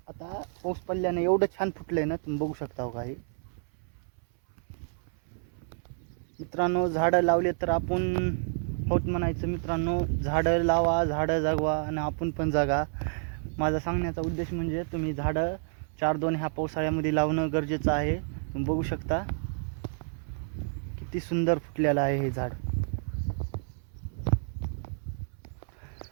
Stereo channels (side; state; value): left; silent; 58 dB below the other